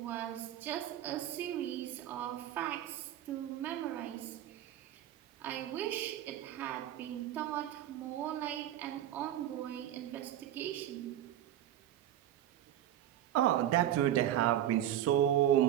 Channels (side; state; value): left; quieter; 12.1 dB